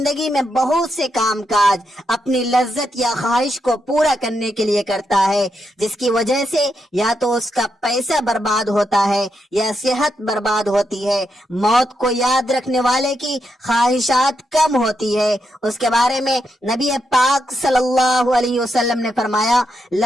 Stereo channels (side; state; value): both; normal; correlation 0.83